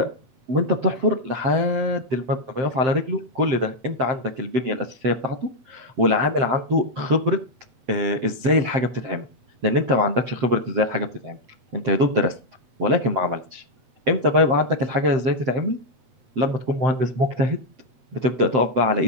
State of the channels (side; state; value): left; late; 7.7 ms